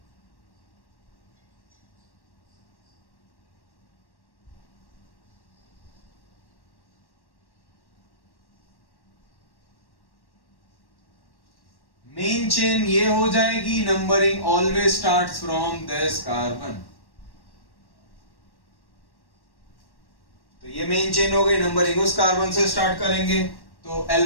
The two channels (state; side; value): late; right; 1.1 ms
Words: मेन चेन ये हो जाएगी, numbering always starts from this carbon. तो ये मेन चेन हो गई, नंबरिंग उस कार्बन से स्टार्ट करेंगे। तो